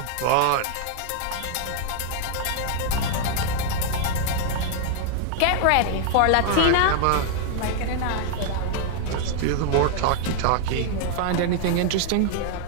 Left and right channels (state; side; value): different; both; correlation 0.00